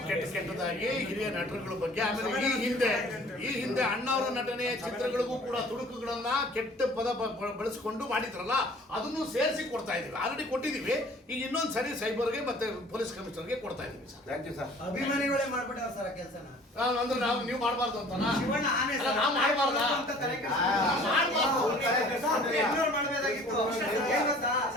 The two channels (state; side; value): normal; both; correlation 0.50